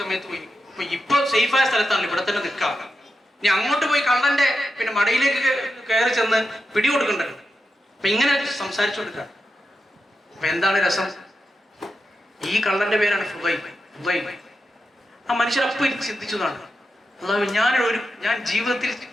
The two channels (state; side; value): normal; both; correlation 0.88